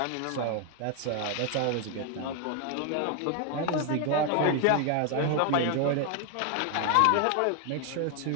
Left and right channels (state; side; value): different; both; correlation 0.01